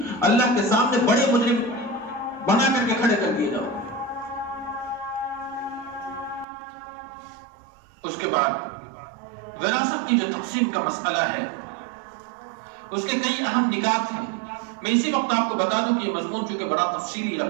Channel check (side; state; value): left; drops out; at 6.5 s